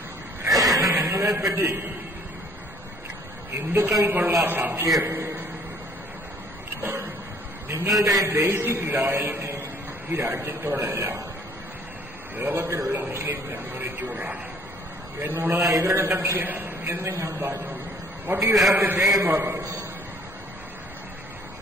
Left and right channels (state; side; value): normal; both; correlation 0.58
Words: നിങ്ങളെപ്പറ്റി ഹിന്ദുക്കൾക്കുള്ള സംശയം നിങ്ങളുടെ ബേസിക് ലോയൽറ്റി ഈ രാജ്യത്തോടല്ല ലോകത്തിലുള്ള മുസ്ലിം കമ്മ്യൂണിറ്റിയോടാണ് എന്നുള്ളത് ഇവരുടെ സംശയം എന്ന് ഞാൻ പറഞ്ഞു. What you have to say about this